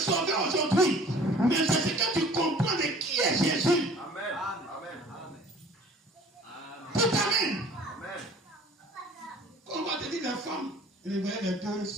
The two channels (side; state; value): both; normal; correlation 0.49